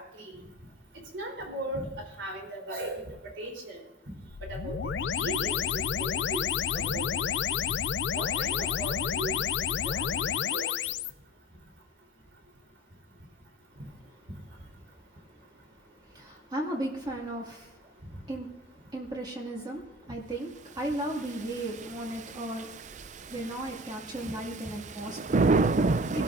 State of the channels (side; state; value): both; normal; correlation 0.32